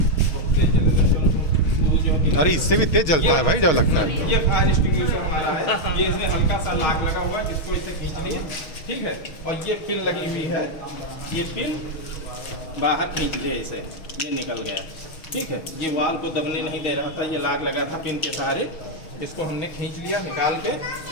अरे इससे भी तेज जलता है भाई जब लगता है। ये फायर एक्सटिंग्विशर हमारा है, ये इसमें हल्का सा लाक लगा हुआ है जिसको इसे खींच लिए, ठीक है। और ये पिन लगी हुई है, ये पिन बाहर खींच लिया इसे, ये निकल गया, ठीक है। ये वाल को दबने नहीं दे रहा था, ये लाग लगा था पिन के सहारे, इसको हमने खींच लिया निकाल के,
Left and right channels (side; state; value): right; late; 6.4 ms